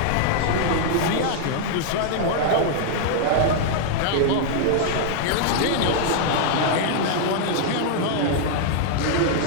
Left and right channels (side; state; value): both; different; correlation -0.01